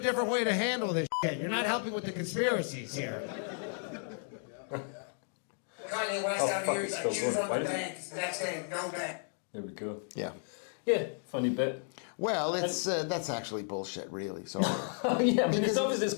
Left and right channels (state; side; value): silent; right; 55 dB below the other